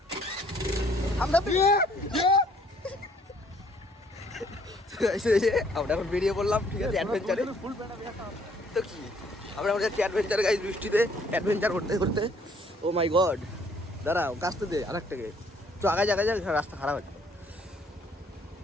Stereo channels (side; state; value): both; normal; correlation 0.62